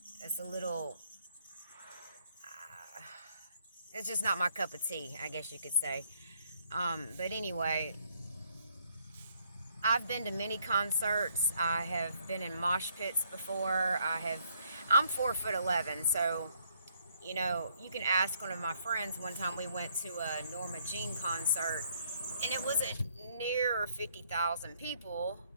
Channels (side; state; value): both; inverted; correlation -0.68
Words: It's a little, it's just not my cup of tea, I guess you could say. But anyway, I've been to many concerts. I have been in mosh pits before. I'm 4'11", so you can ask one of my friends. One time we went to a Norma Jean concert, and it wasn't near 50,000 people,